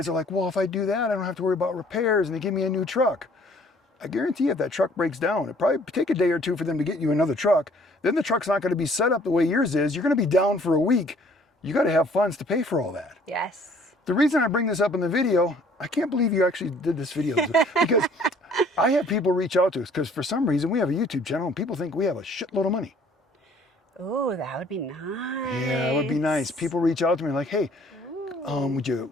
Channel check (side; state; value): both; normal; correlation 0.57